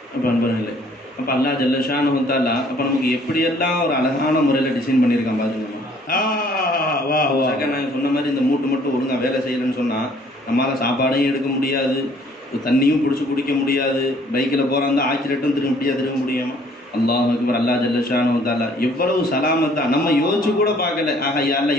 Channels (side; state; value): both; normal; correlation 0.59